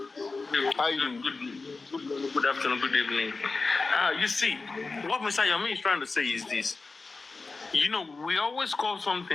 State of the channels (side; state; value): right; quieter; 3.9 dB